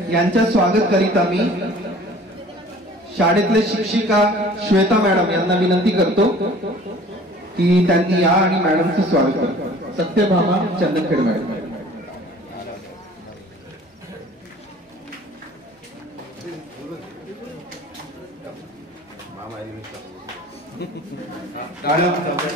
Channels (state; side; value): normal; both; correlation 0.48